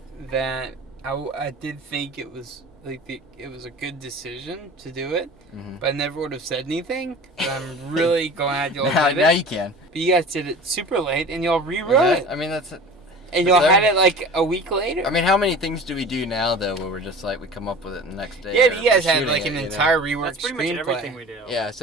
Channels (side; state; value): both; normal; correlation 0.39